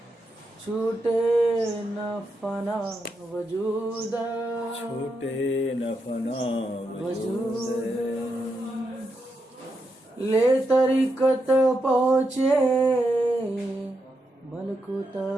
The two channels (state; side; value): normal; both; correlation 0.84